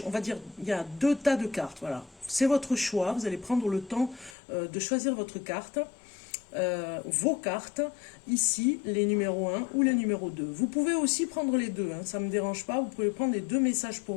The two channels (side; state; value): right; drops out; at 4.4 s